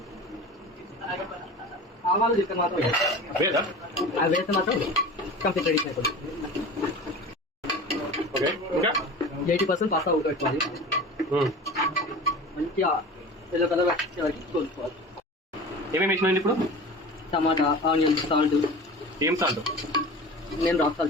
ఆవాలు చెప్తే మాత్రం వేదా? అవి వేస్తే మాత్రం కంప్లీట్ రెడీ అయిపోతుంది. ఓకే, ఇంకా 80% పాస్తా ఉడకబెట్టుకోవాలి. మంచిగా ఎల్లో కలర్ వచ్చే వరకు కోసుకోవాలి. ఏమేమి వేసినాయండి ఇప్పుడు? టమాటా, ఆనియన్, సాల్ట్. ఏం సాల్ట్? నేను రాక్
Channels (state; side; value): normal; both; correlation 0.35